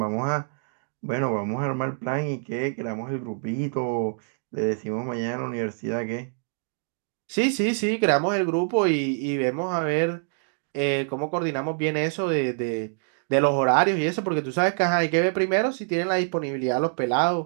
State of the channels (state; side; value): silent; left; digital silence